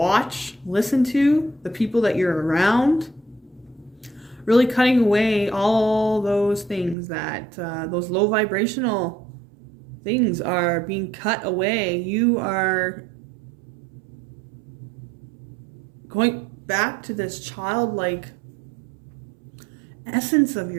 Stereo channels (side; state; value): left; drops out; at 7.0 s